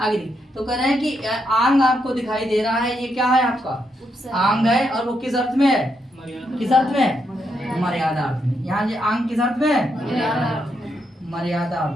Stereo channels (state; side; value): normal; both; correlation 0.80